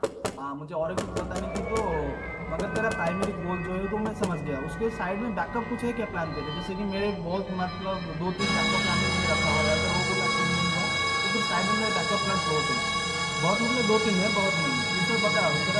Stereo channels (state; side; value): identical; both; correlation 1.00